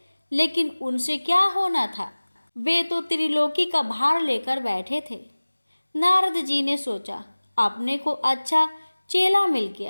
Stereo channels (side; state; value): both; inverted; correlation -1.00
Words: लेकिन उनसे क्या होना था, वे तो त्रिलोकी का भार लेकर बैठे थे। नारद जी ने सोचा, अपने को अच्छा चेला मिल